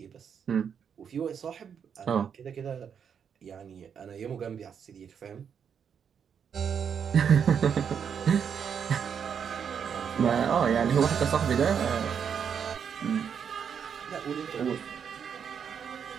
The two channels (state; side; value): quieter; left; 7.4 dB